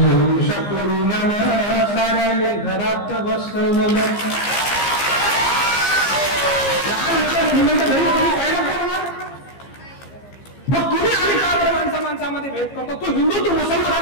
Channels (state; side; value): late; right; 15 ms